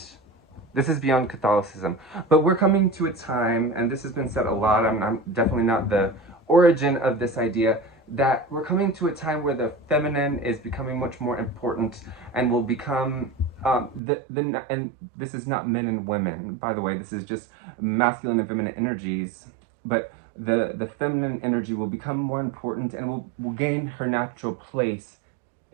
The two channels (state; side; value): drops out; left; at 14.0 s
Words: Catholicism, but we're coming to a time, and this has been said a lot. I'm definitely not the origin of this idea, that we're coming to a time where the feminine is becoming much more important and will become and this is not men and women, by the way. This is just masculine and feminine energies, but the feminine energy will become more important and will gain her natural place